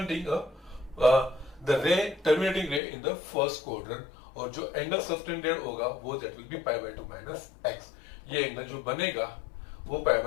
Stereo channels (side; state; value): right; drops out; at 2.8 s